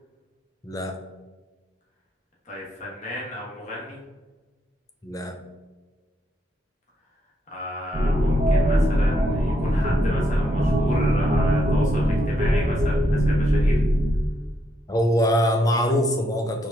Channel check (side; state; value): both; normal; correlation 0.77